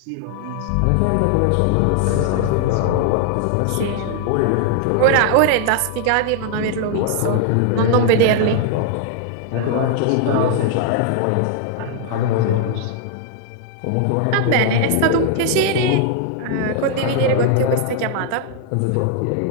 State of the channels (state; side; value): different; both; correlation 0.00